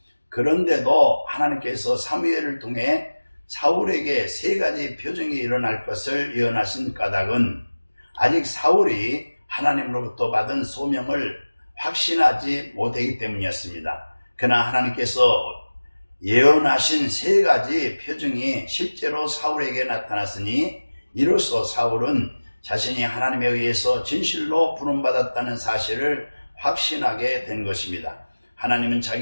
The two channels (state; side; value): inverted; both; correlation -1.00